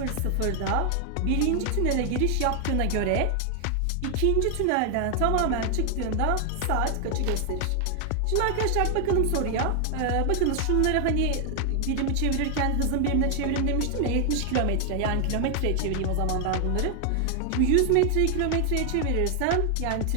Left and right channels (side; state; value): both; different; correlation 0.00